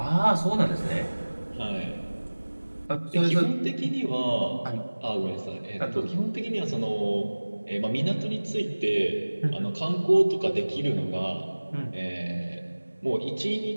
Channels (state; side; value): inverted; both; correlation -1.00